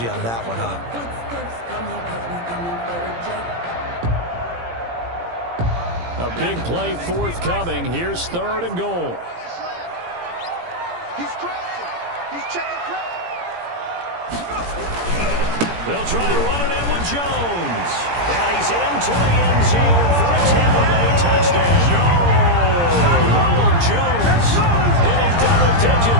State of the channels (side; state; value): left; late; 17 ms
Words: on that one, huh? A big play forthcoming. Here's third and goal. He's crashing. He's checking crash. They'll try to run it in with Jones. And he's into the end zone for a Tampa Bay touchdown. Ronald Jones hitting double